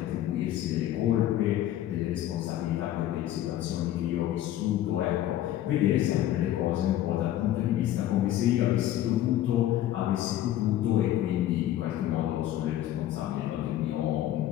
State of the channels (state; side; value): quieter; right; 12.9 dB